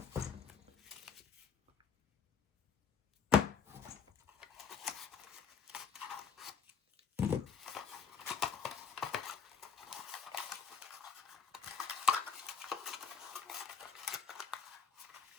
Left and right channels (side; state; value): right; quieter; 6.3 dB